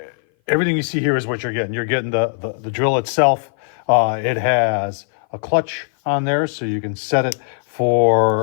Everything you see here is what you're getting. You're getting the drill itself. It has a clutch on there, so you can set it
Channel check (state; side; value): silent; right; 58 dB below the other